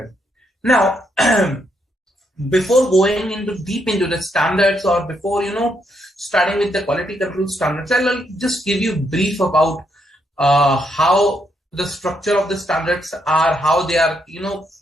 Now, before going into deep into the standards or before, starting with the quality control standards, I'll just give you brief about how the structure of the standards are, how they are,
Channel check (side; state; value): both; normal; correlation 0.77